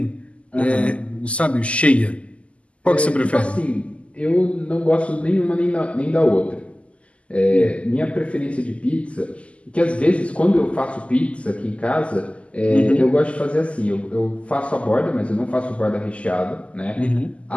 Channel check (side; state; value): right; late; 0.060 ms